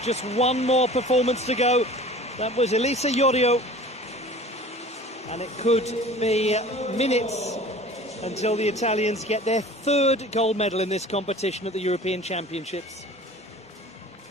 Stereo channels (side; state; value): both; normal; correlation 0.43